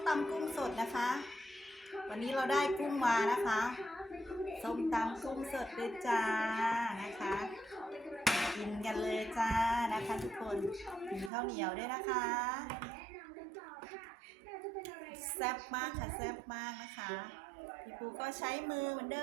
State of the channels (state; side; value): drops out; left; at 11.3 s